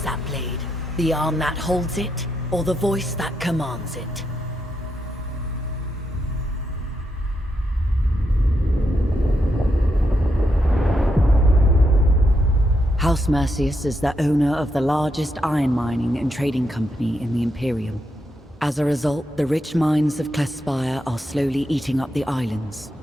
that blade? The arm that holds it, or the voice that commands it? House Mercius is the owner of the largest iron mining and trading company in the Imperium. As a result, the rich mines of Clefspire are slowly eating up the islands,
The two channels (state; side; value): normal; both; correlation 0.82